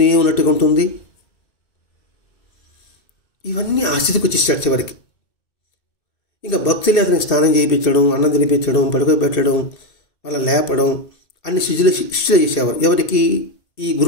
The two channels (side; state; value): right; late; 2.2 ms